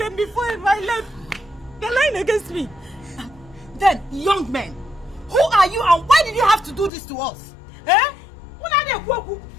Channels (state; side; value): drops out; right; at 6.9 s